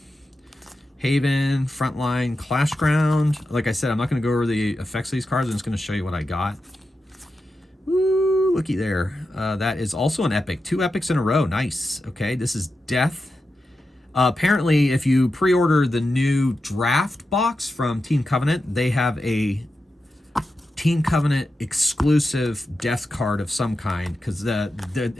Haven, Frontline, Clashground. Like I said, I'm not going to go over the effects of these cards. I'm just going to show you what I got. Woo, looky there. That is also an epic. 2 epics in a row. Nice. Okay, this is Death. Apparently, if you pre-order the new draft box from Team Covenant, they have a Team Covenant exclusive Death card of some kind, because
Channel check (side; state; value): both; normal; correlation 0.90